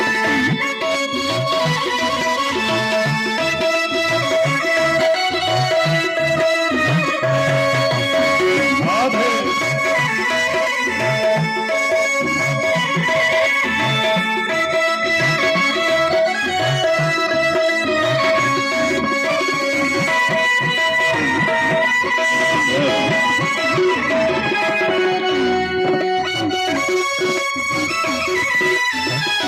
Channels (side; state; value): both; identical; correlation 1.00